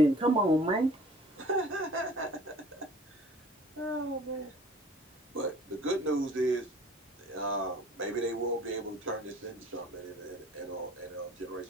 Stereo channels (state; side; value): normal; both; correlation 0.49